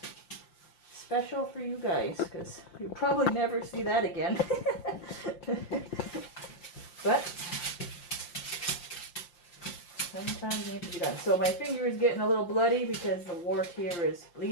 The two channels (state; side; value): late; right; 5.8 ms